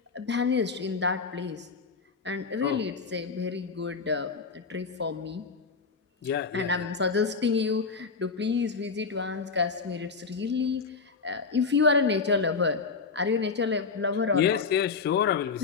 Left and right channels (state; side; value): quieter; right; 4.9 dB